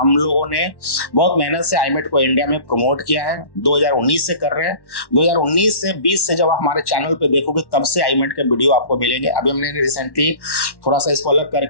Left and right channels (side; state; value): right; late; 1.1 ms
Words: लोगों ने बहुत मेहनत से आईमेट को इंडिया में प्रमोट किया है, 2019 से कर रहे हैं। 2019 से 20 से जब हमारे चैनल पे देखोगे, तब से आईमेट के वीडियो आपको मिलेंगे। अभी हमने रिसेंटली थोड़ा सा इसको अलग